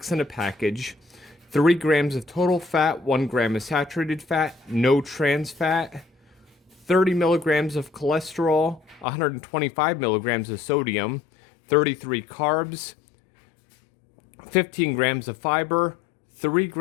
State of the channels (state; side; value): drops out; right; at 9.1 s